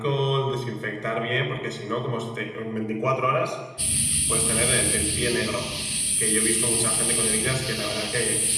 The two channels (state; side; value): identical; both; correlation 1.00